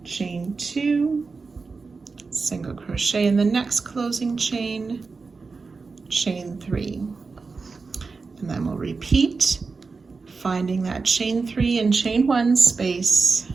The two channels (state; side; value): quieter; left; 4.4 dB